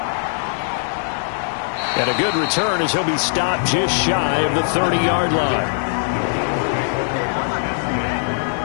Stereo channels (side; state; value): right; silent; digital silence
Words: And a good return as he'll be stopped just shy of the 30-yard line.